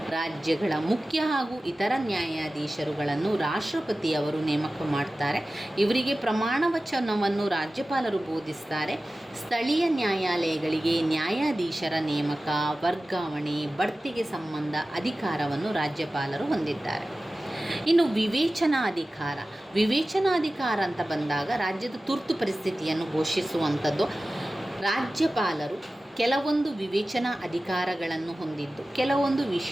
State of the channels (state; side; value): normal; both; correlation 0.96